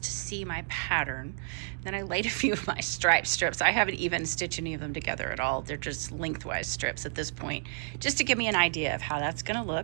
to see my pattern. Then I laid a few of my stripe strips. I haven't even stitched any of them together at all. They're just lengthwise strips at this point, just to give me an idea of how that's going to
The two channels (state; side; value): silent; left; digital silence